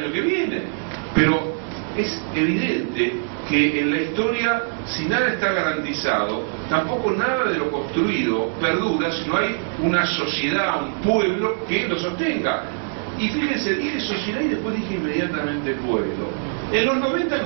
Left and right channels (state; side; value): silent; left; digital silence